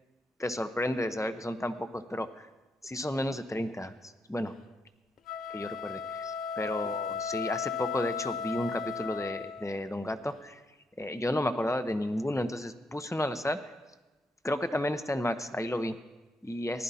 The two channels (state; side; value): normal; both; correlation 0.78